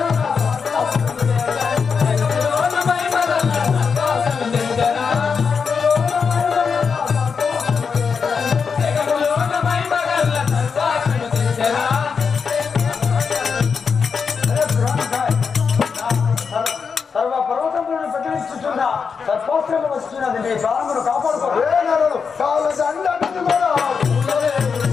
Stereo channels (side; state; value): right; quieter; 5.8 dB